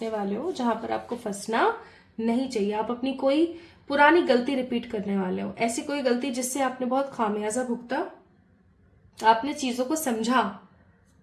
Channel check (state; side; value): identical; both; correlation 1.00